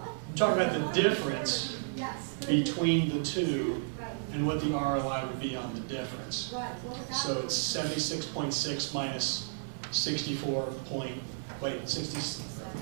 I'm talking about the difference Yes. between the two Right, and what the ROI would be on the difference. right. What would that So be? it's 76.6 minus 64 point, wait, 60,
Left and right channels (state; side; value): silent; left; 56 dB below the other